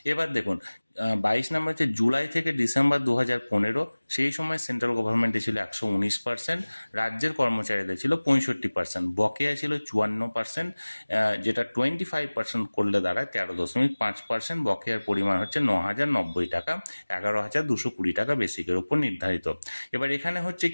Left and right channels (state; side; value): inverted; both; correlation -1.00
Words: এবার দেখুন 22 নম্বর হচ্ছে জুলাই থেকে ডিসেম্বর 2015, সেই সময় সেন্ট্রাল গভর্নমেন্টে ছিল 119%, রাজ্যের কর্মচারীদের ছিল 65%, বকেয়া ছিল 54%, যেটা 25% করলে দাঁড়ায় 13.5%, বকেয়ার পরিমাণ হচ্ছে 9,090 টাকা, 11,220 টাকা বেসিকের উপর নির্ধারিত। এবার এখানে হচ্ছে